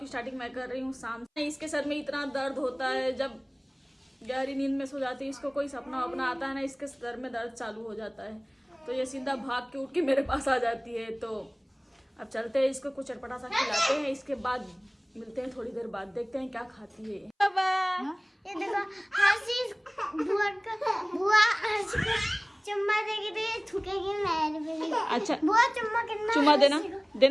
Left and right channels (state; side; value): identical; both; correlation 1.00